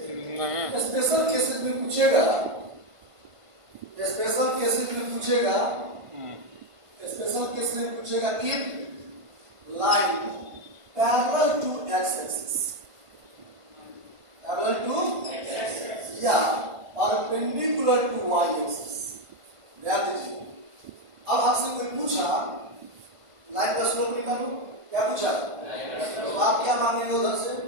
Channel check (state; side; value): late; left; 1.5 ms